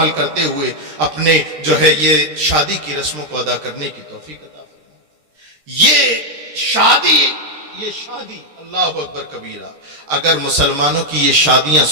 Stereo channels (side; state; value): left; late; 13 ms